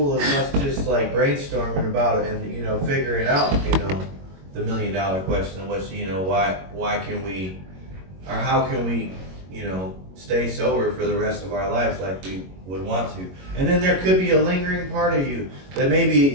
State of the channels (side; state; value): left; late; 22 ms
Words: of us just like brainstorming about it and figuring out the $1 million question, which why can we or how can we stay sober for the rest of our lives like we would want to. And then there could be a lingering part of you that maybe